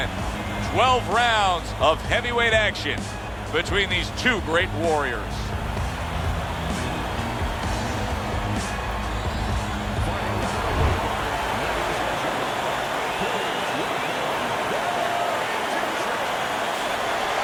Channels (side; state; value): both; identical; correlation 1.00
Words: 12 rounds of heavyweight action between these two great warriors.